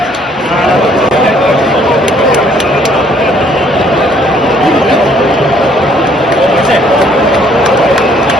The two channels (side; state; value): both; normal; correlation 0.63